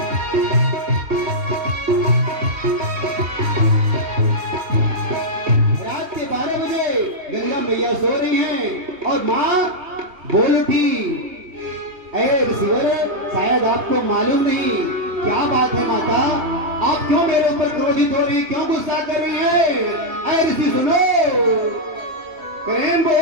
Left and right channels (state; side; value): late; left; 2.8 ms